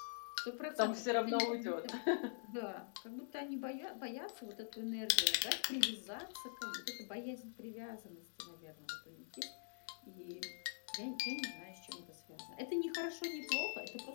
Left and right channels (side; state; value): right; silent; digital silence